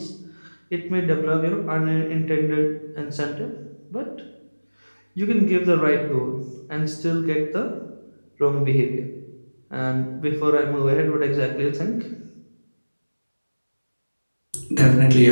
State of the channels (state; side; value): inverted; both; correlation -1.00